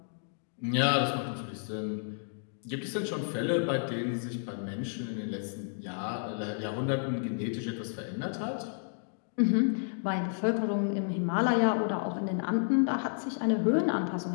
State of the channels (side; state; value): right; silent; digital silence